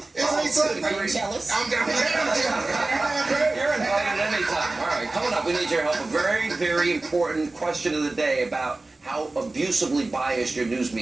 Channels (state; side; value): quieter; left; 3.1 dB